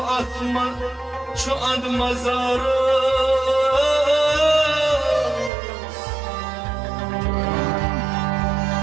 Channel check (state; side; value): drops out; left; at 5.5 s